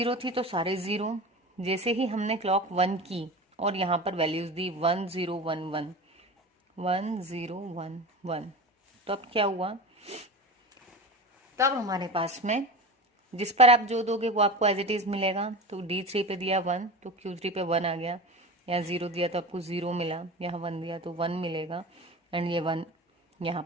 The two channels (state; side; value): normal; both; correlation 0.30